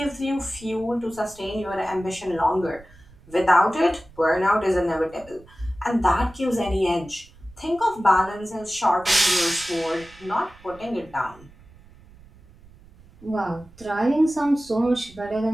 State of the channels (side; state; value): right; noise; rumble, 24 dB below the sound